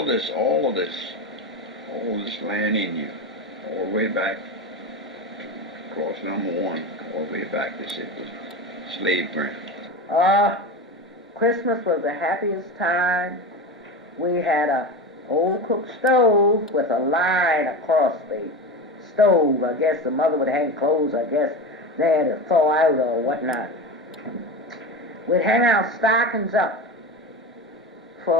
this land in you, all the way back across number 1, all the way back, this it was slave ground. Christmas was the happiest time. We had a old cook stove with a line across the stove. I guess the mother would hang clothes, I guess they had to thaw out or whatnot. We'd hang our stockings up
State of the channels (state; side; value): normal; both; correlation 0.24